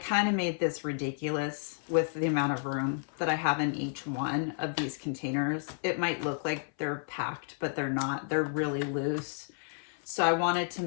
of made this ridiculous with the amount of room that I have in each one of these containers. It might look like they're packed, but they're not. They're really loose. So I wanted to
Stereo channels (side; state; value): right; silent; 57 dB below the other